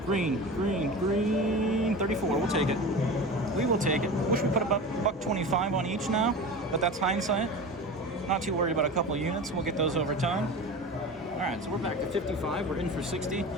Green, green, green. 34. We'll take it. We will take it. Wish we put about $1.25 on each now, but that's hindsight. Not too worried about a couple units. We'll get those over time. All right, so we're back to 55. We're in for 60.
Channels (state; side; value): normal; both; correlation 0.31